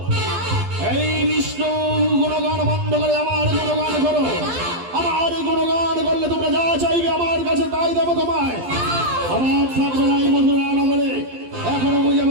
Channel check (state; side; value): late; left; 12 ms